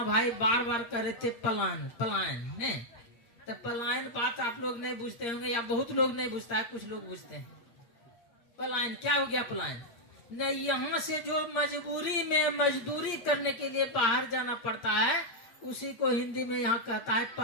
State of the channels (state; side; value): late; right; 8.6 ms